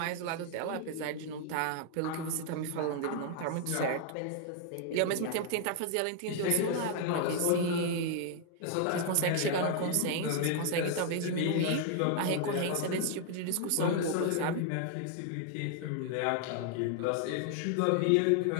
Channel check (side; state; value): both; different; correlation 0.00